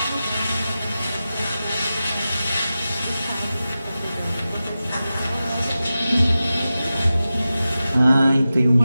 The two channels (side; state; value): both; inverted; correlation -0.94